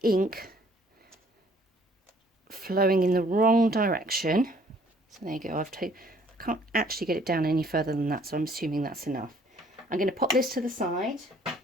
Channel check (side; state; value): both; normal; correlation 0.60